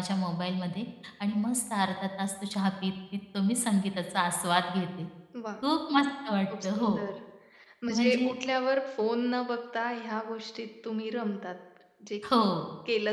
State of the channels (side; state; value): both; identical; correlation 1.00